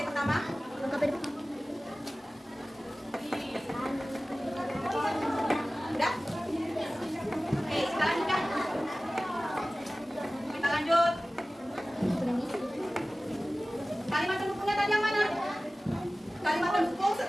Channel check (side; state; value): both; normal; correlation 0.97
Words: pertama. Udah? pendukungnya tadi yang mana? Kalimat pendukung